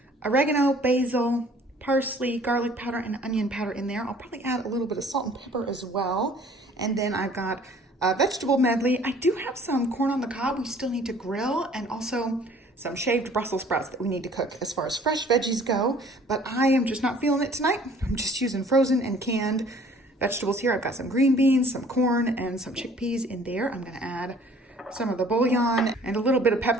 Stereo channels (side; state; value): both; normal; correlation 0.54